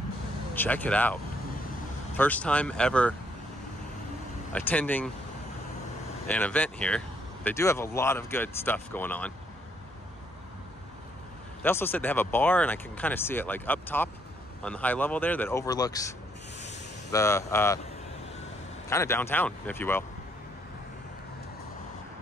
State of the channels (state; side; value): normal; both; correlation 0.70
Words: Check it out. First time ever attending an event here. They do have a lot of good stuff going on. They also said they have a bar, and I can kind of see it like up top on the high level there that overlooks the kind of downtown, if you will.